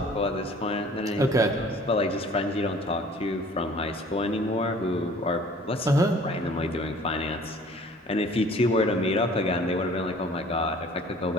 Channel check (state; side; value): normal; both; correlation 0.51